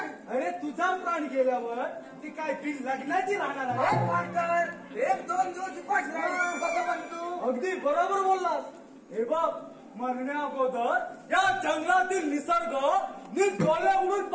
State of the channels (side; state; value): both; identical; correlation 1.00